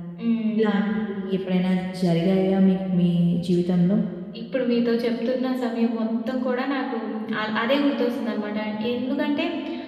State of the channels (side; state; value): both; identical; correlation 1.00